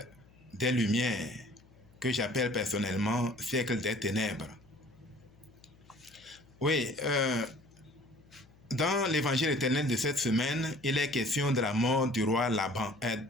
des Lumières que j'appelle personnellement siècle des ténèbres. Oui, dans l'évangile éternel de cette semaine, il est question de la mort du roi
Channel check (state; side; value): noise; left; hum, 27 dB below the sound